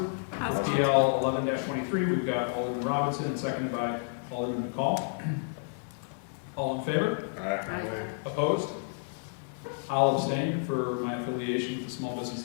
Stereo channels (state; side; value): silent; right; digital silence